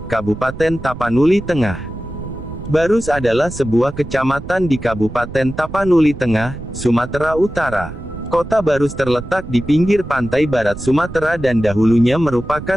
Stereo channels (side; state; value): right; noise; rumble, 12 dB below the sound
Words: Kabupaten Tapanuli Tengah. Barus adalah sebuah kecamatan di Kabupaten Tapanuli Tengah, Sumatera Utara. Kota Barus terletak di pinggir pantai barat Sumatera dan dahulunya